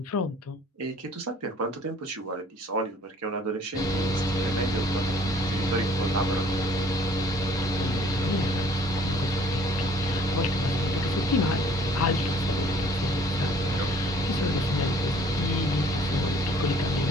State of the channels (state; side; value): normal; both; correlation 0.56